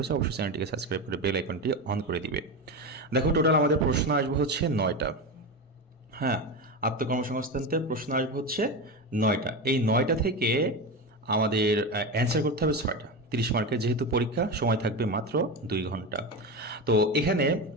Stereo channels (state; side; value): normal; both; correlation 0.19